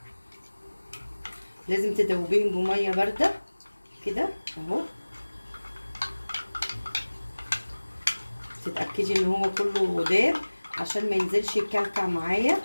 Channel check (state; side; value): inverted; both; correlation -1.00